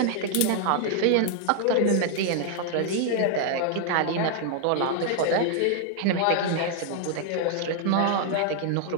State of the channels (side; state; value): both; different; correlation 0.00